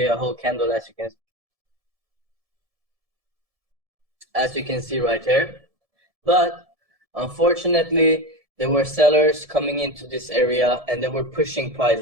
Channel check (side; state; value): left; late; 1.7 ms